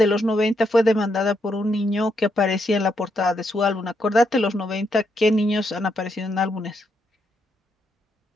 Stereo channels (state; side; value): normal; both; correlation 0.78